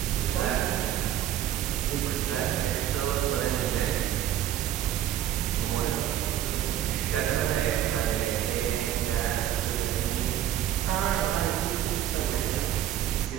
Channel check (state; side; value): quieter; left; 11.5 dB